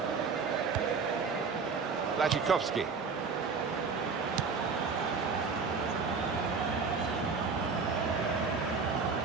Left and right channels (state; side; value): quieter; left; 5.1 dB